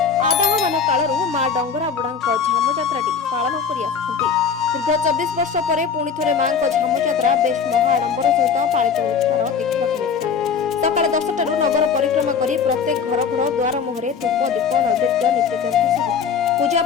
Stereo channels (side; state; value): right; quieter; 6.3 dB